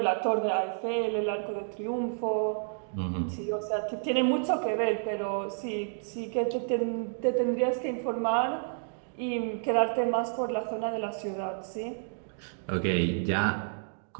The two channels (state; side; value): silent; left; digital silence